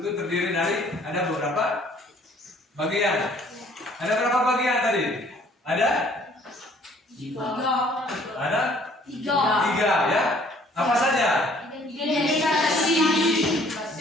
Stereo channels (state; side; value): normal; both; correlation 0.58